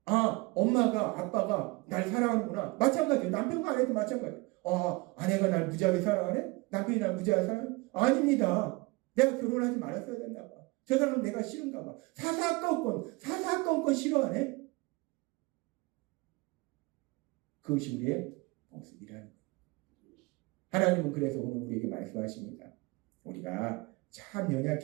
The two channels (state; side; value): quieter; left; 24.7 dB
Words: 아, 엄마가 아빠가 날 사랑하는구나. 마찬가지예요. 남편과 아내도 마찬가지예요. 아, 아내가 날 무지하게 사랑하네? 남편이 날 무지하게 사랑하네? 아닙니다. 내가 결혼하지 말았어야 됐나 봐. 저 사람은 내가 싫은가 봐. 사사건건 싫어하네? 그것이 우리의 모습이라는 거예요. 하나님은 그래서 오늘 우리에게 말씀하십니다. 우리가 참